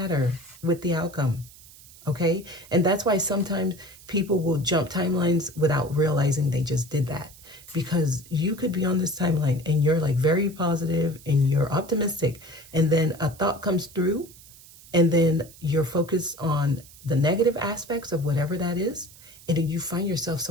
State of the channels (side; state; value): right; noise; hiss, 21 dB below the sound